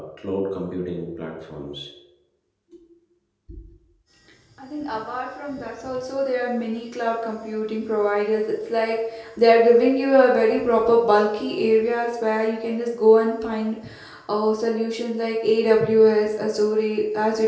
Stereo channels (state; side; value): identical; both; correlation 1.00